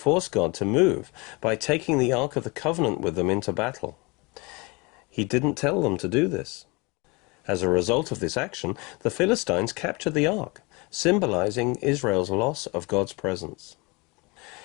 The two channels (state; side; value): quieter; right; 27.3 dB